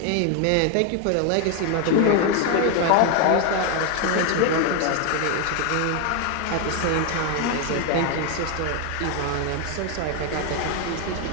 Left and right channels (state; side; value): different; both; correlation 0.01